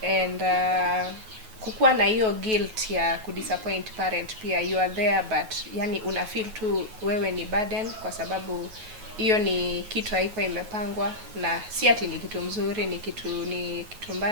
and kukuwa na hiyo guilt ya kudisappoint parent pia. You are there, but yani una feel tu wewe ni burden, kwa sababu hiyo ni kitu haiko imepangwa, na si ati ni kitu mzuri, ni kitu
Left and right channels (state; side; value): late; left; 9.2 ms